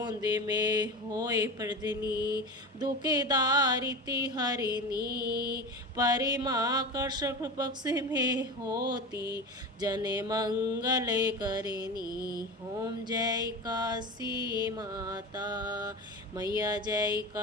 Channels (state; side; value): normal; both; correlation 0.27